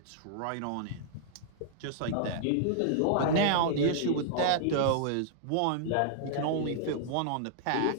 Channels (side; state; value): both; different; correlation -0.01